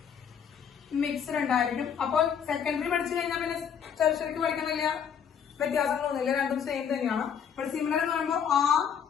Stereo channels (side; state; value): right; quieter; 7.7 dB